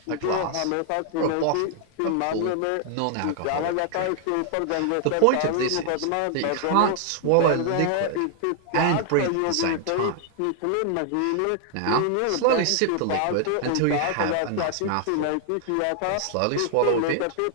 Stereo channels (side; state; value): both; different; correlation 0.00